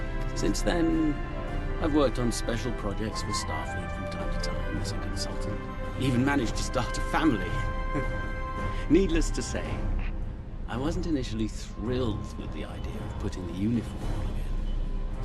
Since then, I've worked on special projects for Starfleet from time to time as a consultant. Even managed to start a family. Needless to say, I wasn't initially thrilled with the idea of putting the uniform on again.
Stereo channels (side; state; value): both; identical; correlation 1.00